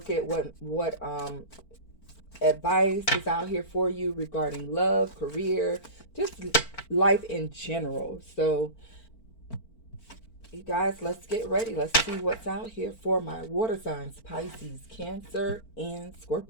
at what advice is out here for you regarding love, career, just life in general. So, you guys, let's get ready. Let's see what's out here for my water signs: Pisces, Cancer, and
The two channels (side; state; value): right; late; 4.4 ms